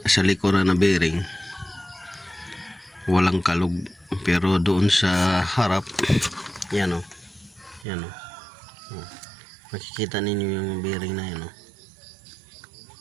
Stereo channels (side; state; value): left; drops out; at 7.9 s